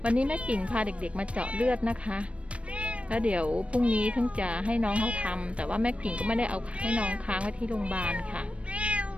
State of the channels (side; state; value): left; late; 0.062 ms